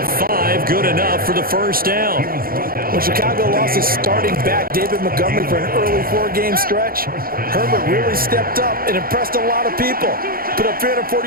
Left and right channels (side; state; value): left; late; 0.42 ms